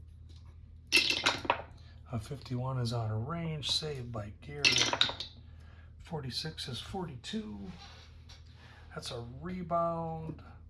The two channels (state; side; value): identical; both; correlation 1.00